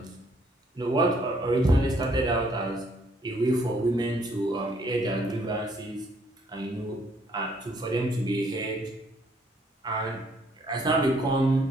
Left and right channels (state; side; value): normal; both; correlation 0.66